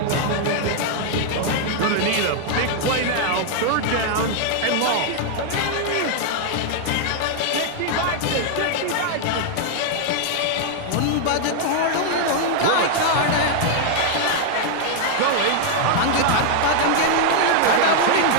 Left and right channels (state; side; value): different; both; correlation 0.00